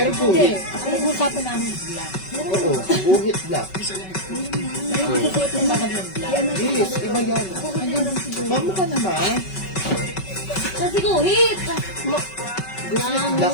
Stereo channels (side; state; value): right; late; 5.3 ms